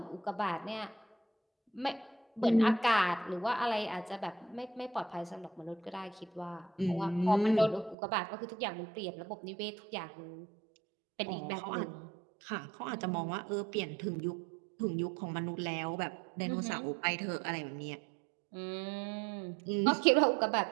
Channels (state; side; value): drops out; left; at 8.0 s